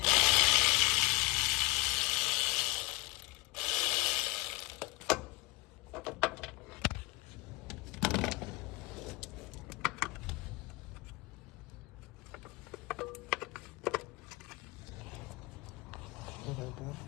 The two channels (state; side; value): quieter; right; 24.2 dB